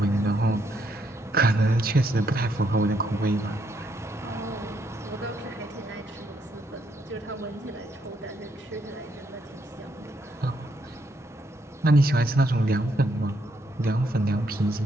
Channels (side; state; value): both; normal; correlation 0.74